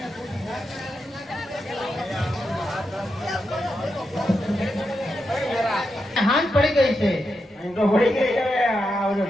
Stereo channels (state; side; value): normal; both; correlation 0.86